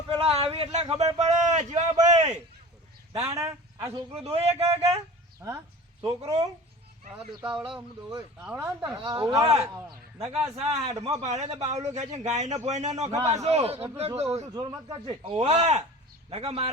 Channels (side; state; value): both; normal; correlation 0.39